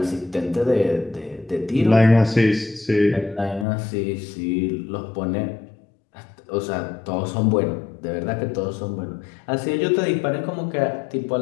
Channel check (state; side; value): drops out; right; at 3.7 s